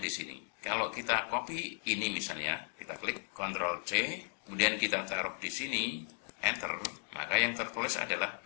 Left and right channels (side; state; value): right; silent; 54 dB below the other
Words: di sini. Kalau kita copy ini misalnya, kita klik Ctrl C, kemudian kita taruh di sini, Enter, maka yang tertulis adalah